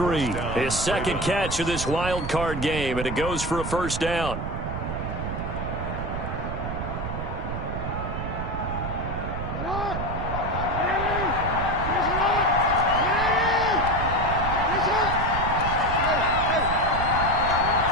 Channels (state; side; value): noise; right; rumble, 4 dB below the sound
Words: His second catch of this wild card game, and it goes for a first down.